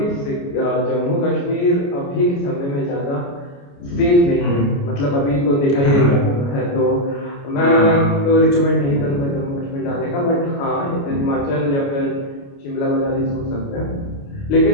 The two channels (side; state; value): right; late; 29 ms